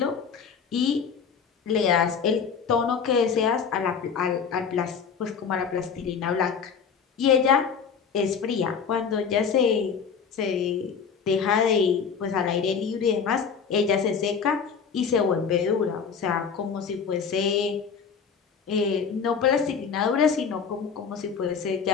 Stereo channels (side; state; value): right; quieter; 6.3 dB